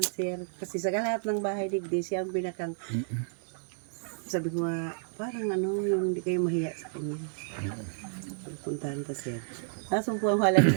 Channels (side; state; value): left; silent; 57 dB below the other